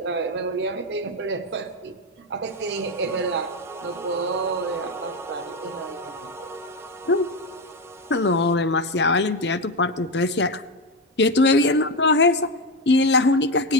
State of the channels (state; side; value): normal; both; correlation 0.12